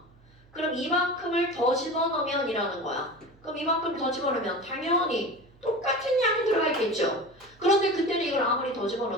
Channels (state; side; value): noise; right; hum, 28 dB below the sound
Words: 그럼 이만큼을 더 집어넣으면 이라는 거야. 그럼 이만큼 더 집어넣으면 당연히 똑같은 양이 들어가 있겠죠. 그런데 그때는 이걸 아무리 더